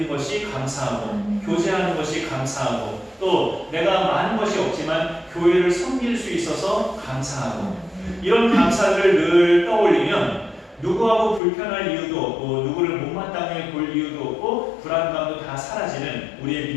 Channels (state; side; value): drops out; right; at 11.4 s